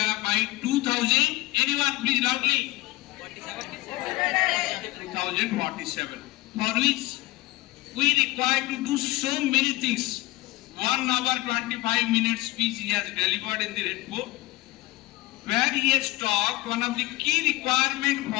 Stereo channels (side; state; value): right; quieter; 19.6 dB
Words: by 2000. Anyone please loudly? 2047. For which we require to do so many things. 1 hour 25 minutes speech he has delivered in the report, where he has talked one of the key requirements